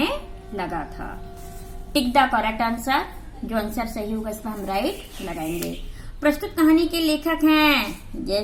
लगा था। टिक द करेक्ट आंसर। जो आंसर सही होगा इस पर हम राइट लगाएंगे। प्रस्तुत कहानी के लेखक हैं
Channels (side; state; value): both; identical; correlation 1.00